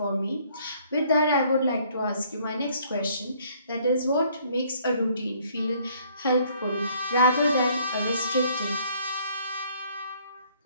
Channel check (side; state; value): both; inverted; correlation -0.62